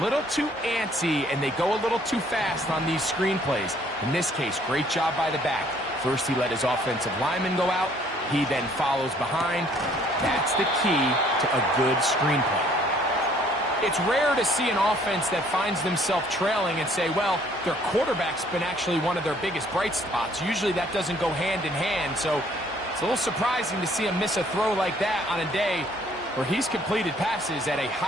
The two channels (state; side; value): normal; both; correlation 0.61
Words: too antsy and they go a little too fast on these screen plays. In this case, great job by the back. First, he let his offensive lineman go out. He then follows behind. That's the key to a good screen play. It's rare to see an offense that finds themselves trailing and say, well, their quarterback's been actually one of their biggest bright spots. Usually that doesn't go hand in hand, so it's a little surprising to see him miss a throw like that on a day where he's completed passes at a